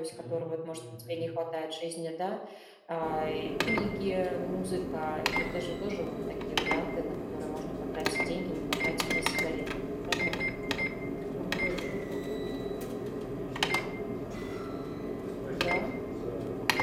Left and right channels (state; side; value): identical; both; correlation 1.00